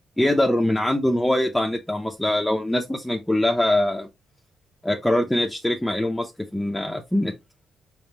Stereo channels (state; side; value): normal; both; correlation 0.96